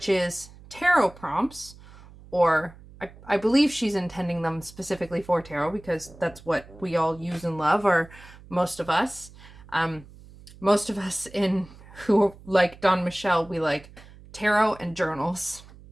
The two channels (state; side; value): noise; right; hum, 21 dB below the sound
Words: is tarot prompts, or I believe she's intending them specifically for tarot, because that's what we all use and love, or most of us. Most of us who like Dawn Michelle, we like tarot and journals.